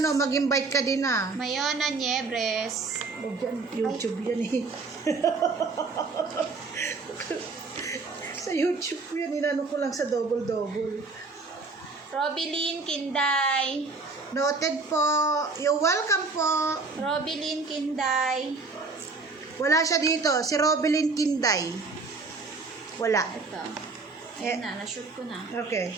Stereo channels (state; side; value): quieter; left; 3.9 dB